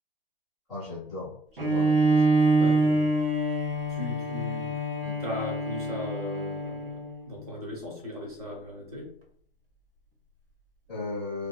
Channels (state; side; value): normal; both; correlation 0.63